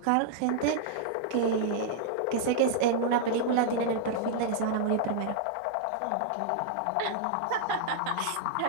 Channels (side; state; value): both; different; correlation -0.01